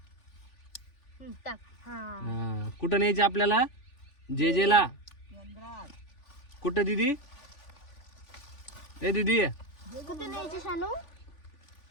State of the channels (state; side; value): late; right; 3.5 ms